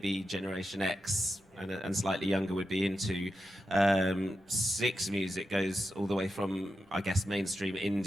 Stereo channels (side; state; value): both; normal; correlation 0.89